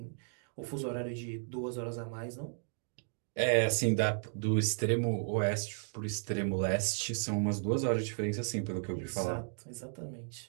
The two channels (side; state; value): left; silent; digital silence